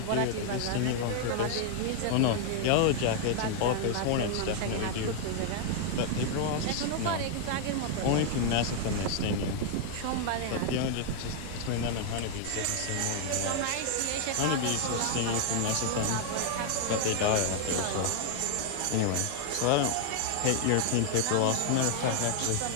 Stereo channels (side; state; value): both; different; correlation 0.00